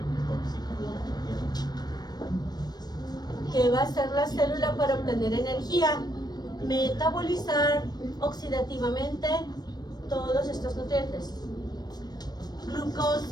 ¿Qué va a hacer la célula para obtener energía? Metabolizar oxidativamente todos estos nutrientes.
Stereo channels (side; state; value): right; late; 0.19 ms